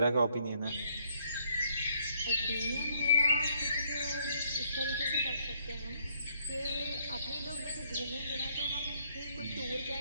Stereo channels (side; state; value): both; inverted; correlation -0.69